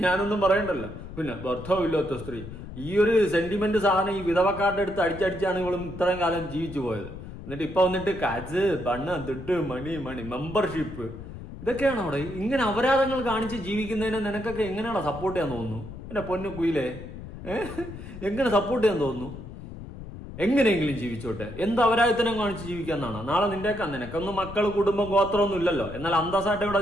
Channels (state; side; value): noise; left; rumble, 12 dB below the sound